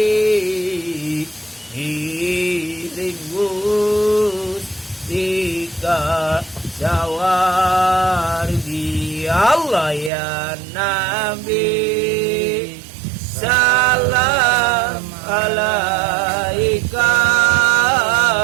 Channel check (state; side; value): drops out; left; at 10.1 s